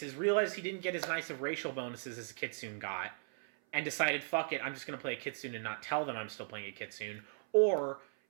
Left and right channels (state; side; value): silent; left; 53 dB below the other